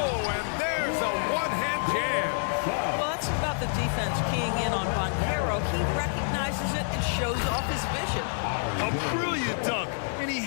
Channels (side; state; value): right; silent; digital silence